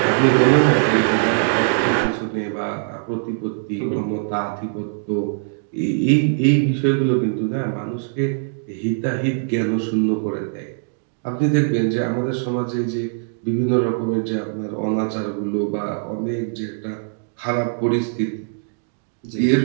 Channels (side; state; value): left; silent; digital silence